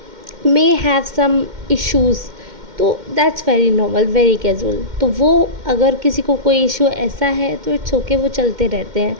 may have some issues, तो that's very normal, very casual. तो वो अगर किसी को कोई इशू ऐसा है तो इट्स ओके, वो चलते रहते हैं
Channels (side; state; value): left; late; 2.1 ms